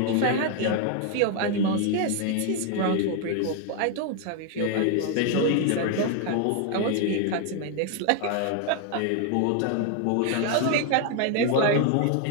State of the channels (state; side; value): different; both; correlation 0.00